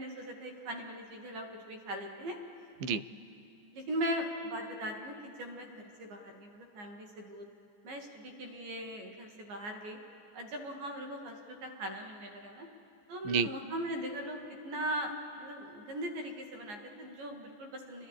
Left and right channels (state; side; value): late; left; 14 ms